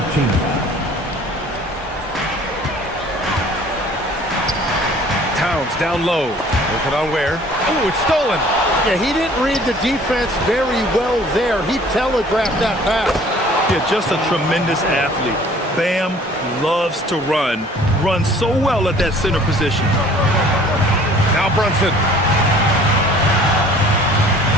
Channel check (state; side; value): normal; both; correlation 0.52